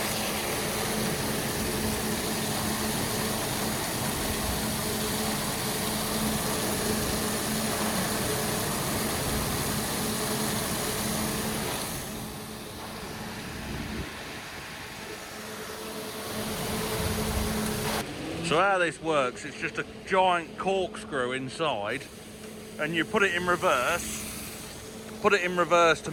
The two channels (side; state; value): both; identical; correlation 1.00